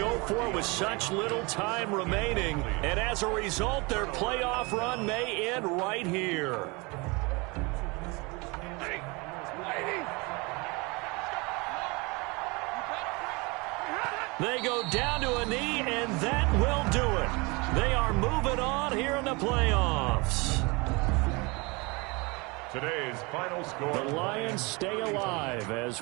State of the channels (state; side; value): quieter; left; 27.0 dB